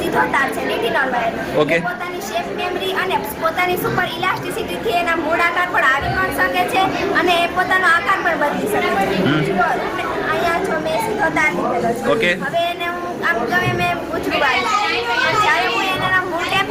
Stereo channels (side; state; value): both; identical; correlation 1.00